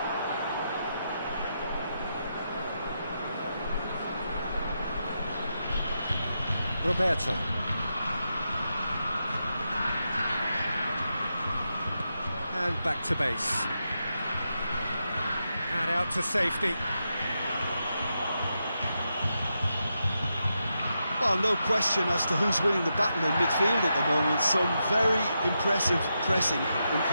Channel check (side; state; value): both; inverted; correlation -0.86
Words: Roberto. And back to base. And out to safety. Well, no question as to who's winning the battle in midfield at the moment. Some very impressive pressing in